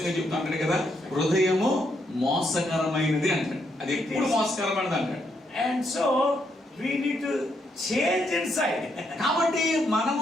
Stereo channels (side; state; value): both; normal; correlation 0.77